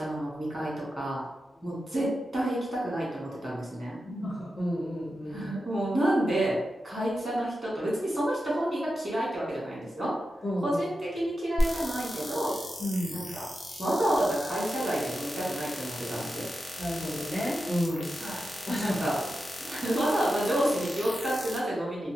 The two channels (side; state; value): both; normal; correlation 0.90